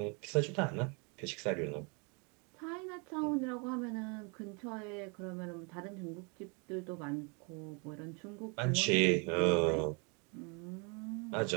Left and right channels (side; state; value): left; quieter; 33.5 dB